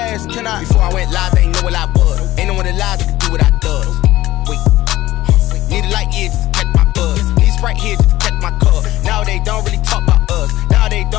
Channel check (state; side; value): quieter; right; 16.0 dB